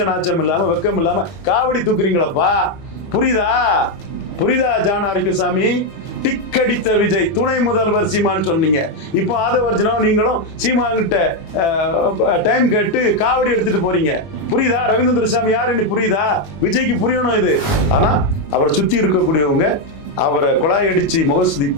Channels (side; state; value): right; late; 20 ms